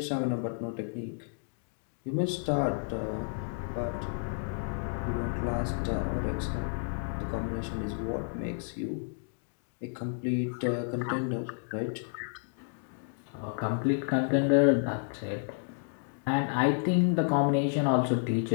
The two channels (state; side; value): silent; right; digital silence